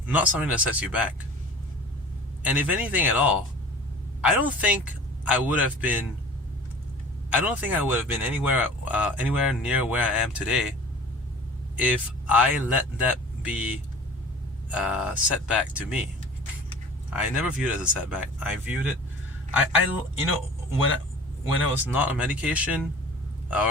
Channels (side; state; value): both; normal; correlation 0.42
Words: something that sets you back. And if anything at all, I don't think I would have been I don't think I would have been anywhere near where I am today if I let that be a setback to me. I never viewed it as a setback. I viewed it, you know, when I was not on medication, or